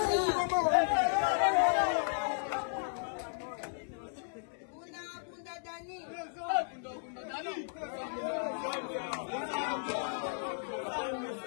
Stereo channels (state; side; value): silent; right; 55 dB below the other